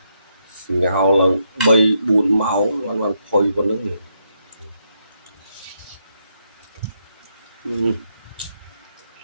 ngào là bay buồn máu hoàn toàn phơi vào nước này.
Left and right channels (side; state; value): both; inverted; correlation -0.78